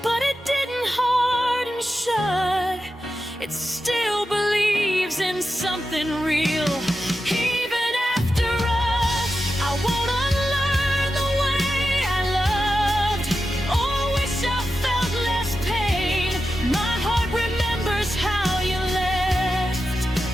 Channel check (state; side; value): normal; both; correlation 0.90